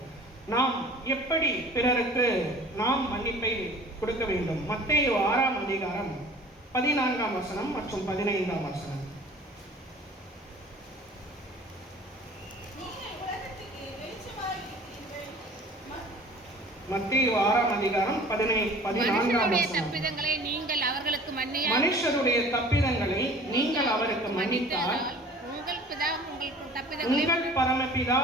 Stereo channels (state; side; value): normal; both; correlation 0.46